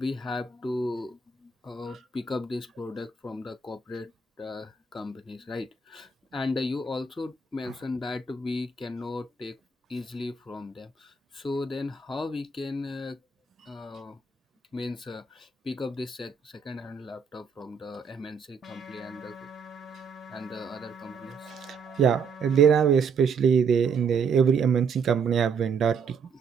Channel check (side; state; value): left; quieter; 4.9 dB